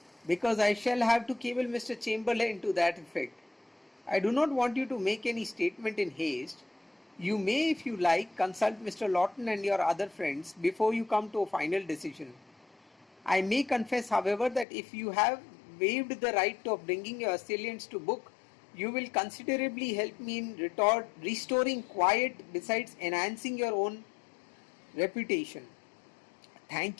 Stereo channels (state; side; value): drops out; right; at 14.7 s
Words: "because I shall have to cable Mr. Chamberlain to that effect. I do not want you to make any statement in haste. You may, if you like, consult Mr. Lawton and your other friends before you come to a final decision. I may confess, however, that if you have waived the right of bringing your assailants to book, you will considerably help me in restoring quiet besides enhancing your own reputation. Thank